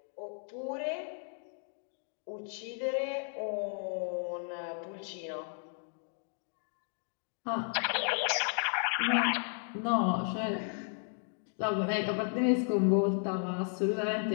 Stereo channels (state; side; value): silent; right; 55 dB below the other